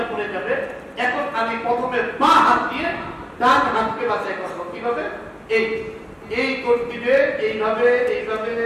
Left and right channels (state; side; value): identical; both; correlation 1.00